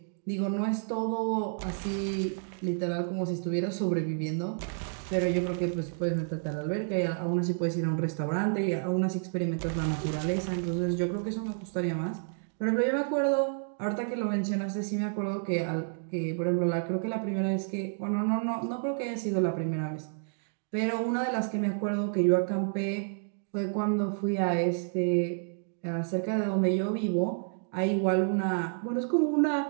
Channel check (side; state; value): left; silent; digital silence